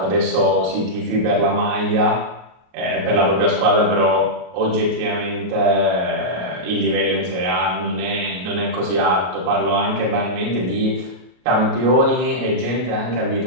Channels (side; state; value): left; late; 33 ms